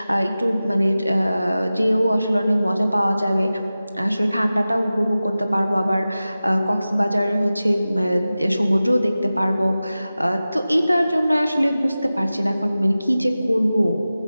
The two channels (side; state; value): both; inverted; correlation -0.95